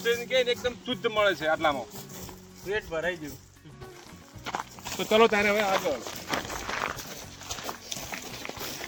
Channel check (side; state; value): both; identical; correlation 1.00